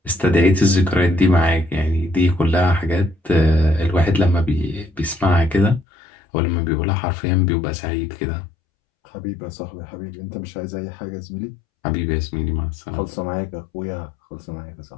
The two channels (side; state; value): right; drops out; at 5.9 s